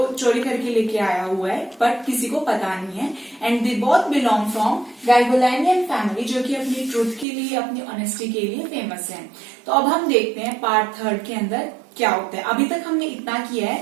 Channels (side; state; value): left; drops out; at 7.2 s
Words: चोरी करके लेके आया हुआ है, बट किसी को पता नहीं है. And they both belong from Garoghlanian family, जो कि अपनी ट्रूथ के लिए, अपनी ऑनेस्टी के लिए फेमस है. तो अब हम देखते हैं पार्ट थर्ड के अंदर क्या होता है. अभी तक हमने इतना किया